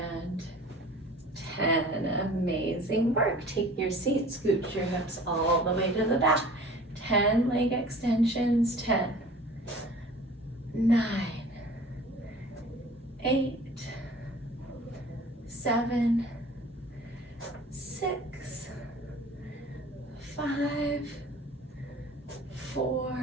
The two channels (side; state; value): both; normal; correlation 0.45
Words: 10. Amazing work. Take your seat, scoot your hips all the way to the back. 10 leg extensions. 10, 9, 8, 7, 6, 5, 4,